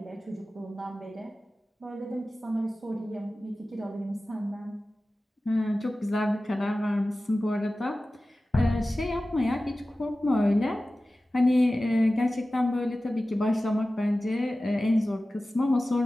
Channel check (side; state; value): both; normal; correlation 0.96